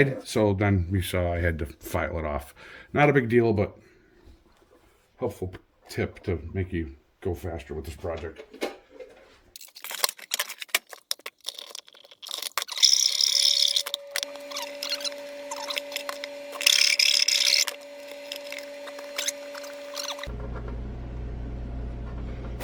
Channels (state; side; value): identical; both; correlation 1.00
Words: So then we saw I had to file it off. Not a big deal, but helpful tip to make you go faster with this project.